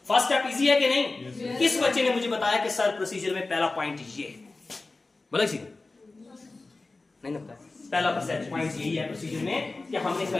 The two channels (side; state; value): right; quieter; 3.4 dB